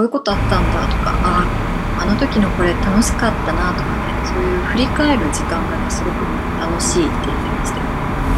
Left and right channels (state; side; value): identical; both; correlation 1.00